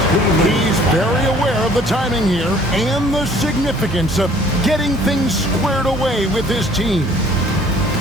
He's very aware of the timing here and the significance of getting things squared away with his team.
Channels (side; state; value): both; normal; correlation 0.55